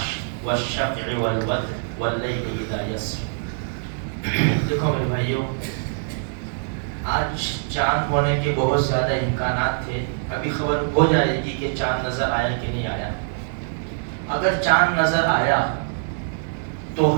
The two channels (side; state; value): left; silent; 63 dB below the other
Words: والشفع والوتر واللیل اذا یسر۔ دیکھو میرے بھائیوں، آج چاند ہونے کے بہت زیادہ امکانات تھے، ابھی خبر ہو جائے گی کہ چاند نظر آیا کہ نہیں آیا۔ اگر چاند نظر آیا تو